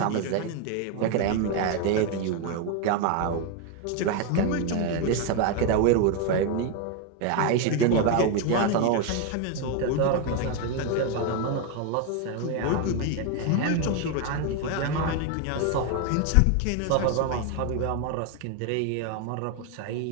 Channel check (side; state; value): both; different; correlation 0.01